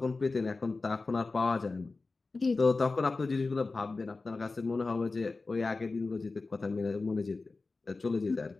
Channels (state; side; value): quieter; right; 3.7 dB